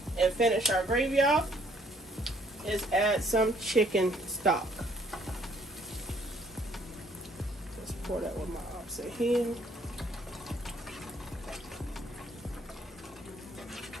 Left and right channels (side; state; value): both; normal; correlation 0.64